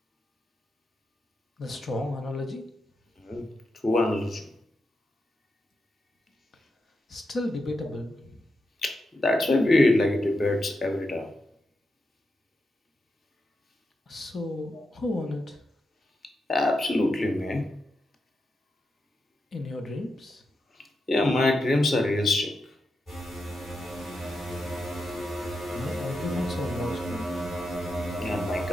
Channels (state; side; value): normal; both; correlation 0.87